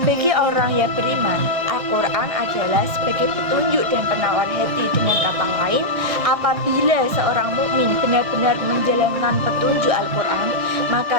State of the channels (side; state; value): left; late; 1.6 ms